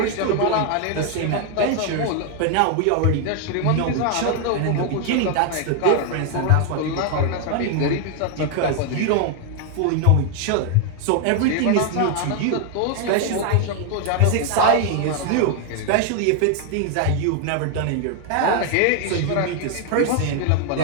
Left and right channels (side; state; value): both; different; correlation 0.00